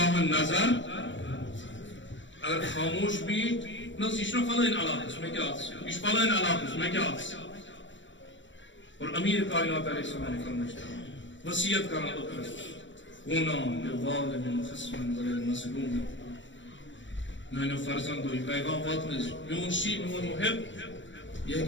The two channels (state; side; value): late; right; 0.54 ms